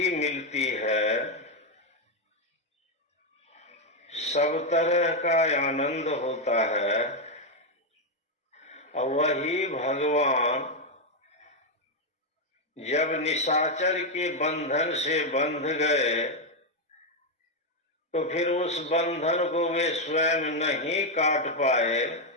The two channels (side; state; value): both; normal; correlation 0.03